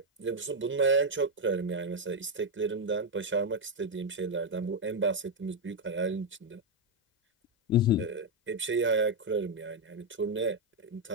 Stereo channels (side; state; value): both; normal; correlation 0.03